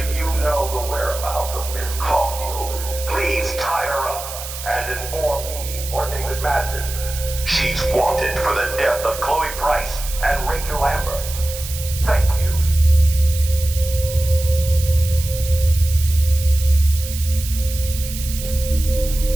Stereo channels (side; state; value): right; noise; hiss, 10 dB below the sound